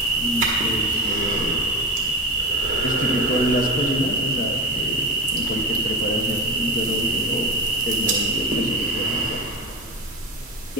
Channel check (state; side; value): normal; both; correlation 0.21